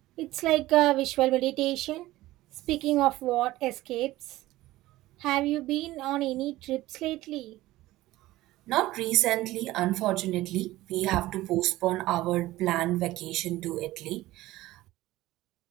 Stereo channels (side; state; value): left; quieter; 17.0 dB